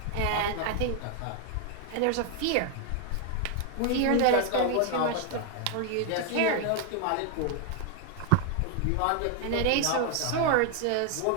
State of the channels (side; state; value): both; different; correlation 0.00